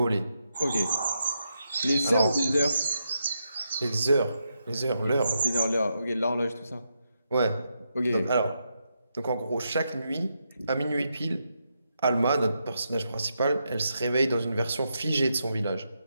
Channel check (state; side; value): inverted; both; correlation -0.83